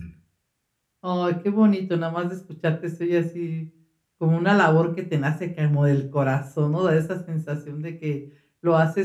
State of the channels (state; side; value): identical; both; correlation 1.00